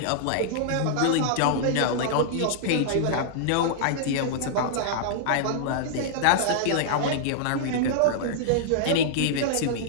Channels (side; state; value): both; different; correlation -0.01